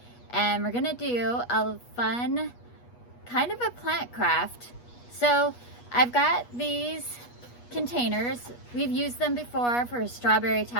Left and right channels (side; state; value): right; late; 8.3 ms